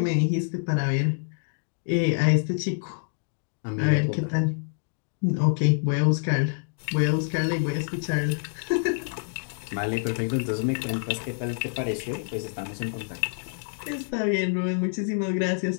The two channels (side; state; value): right; silent; digital silence